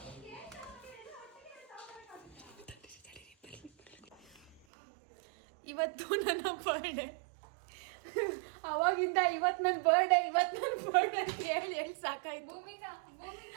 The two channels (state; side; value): drops out; left; at 4.6 s